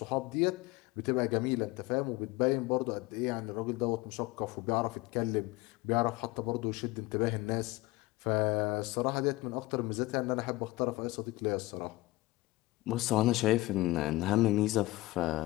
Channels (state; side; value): quieter; right; 19.8 dB